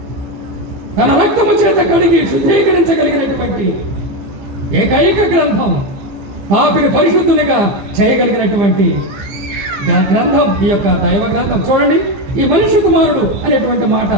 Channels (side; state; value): left; late; 15 ms